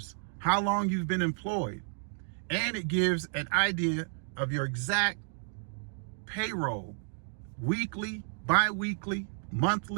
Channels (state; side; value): silent; left; 57 dB below the other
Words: how long you've been employed, and it gives an idea of your exact payroll, weekly, bi-weekly,